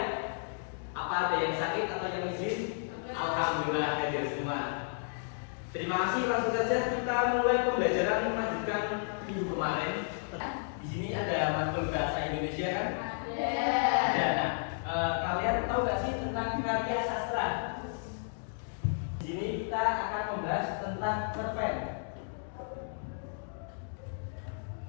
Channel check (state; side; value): silent; right; digital silence